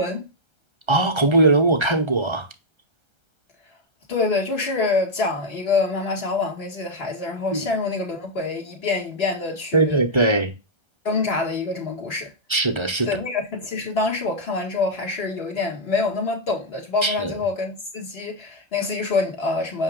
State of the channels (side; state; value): left; late; 1.3 ms